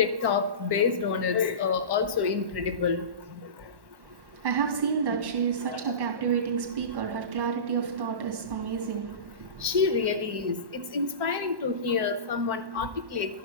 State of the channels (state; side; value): late; left; 1.1 ms